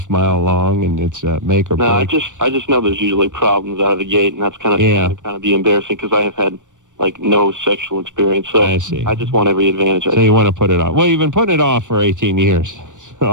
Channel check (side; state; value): left; late; 0.87 ms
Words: mile long, and it's make or break. No, I just know there's usually problems out of the gate, and that's kind of be embarrassing because I have had no sexual experience. So I see. I just want every advantage. So you want to put it off. Well, you've been putting it off for 18 years.